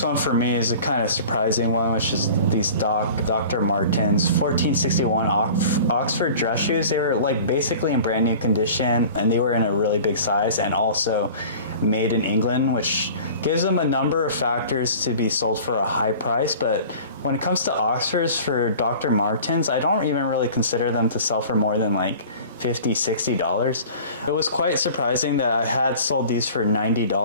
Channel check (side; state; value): both; inverted; correlation -0.42